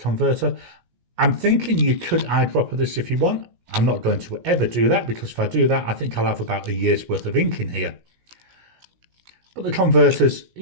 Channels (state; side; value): late; left; 17 ms